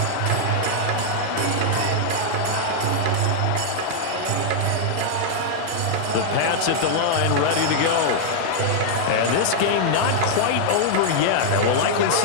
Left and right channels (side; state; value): both; different; correlation -0.01